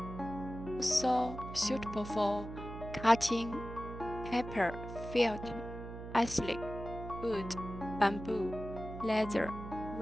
also suitable for cutting paper, felt, acrylic, wood, bamboo, leather,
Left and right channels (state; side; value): noise; right; hum, 10 dB below the sound